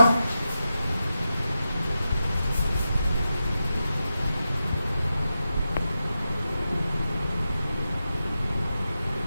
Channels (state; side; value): inverted; both; correlation -0.90